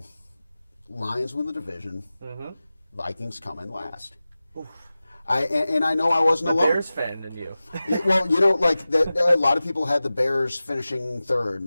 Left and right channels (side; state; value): both; inverted; correlation -0.96